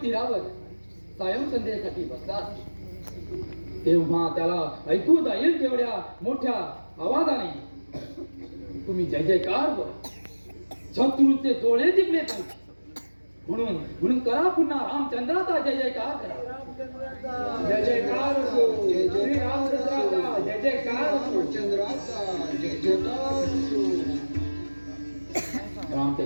तीरावर सायं संध्येसाठी बसला आहे. तेव्हा त्याला ऐकू जाईल तेवढ्या मोठ्या आवाजाने तुम्ही जय जयकार बोला. शत्रूचे डोळे दिपले पाहिजे म्हणून करा पुन्हा रामचंद्राचा जय जयकार करा. जय जयकार असो. श्री रामचंद्राचा जय जयकार असो. रामचंद्राचा जय जयकार असो.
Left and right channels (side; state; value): both; inverted; correlation -1.00